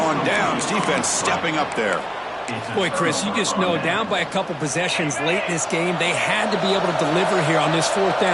on downs. Defense stepping up there. Boy, Chris, you just know down by a couple possessions late in this game, they had to be able to deliver here on this 4th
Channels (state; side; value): identical; both; correlation 1.00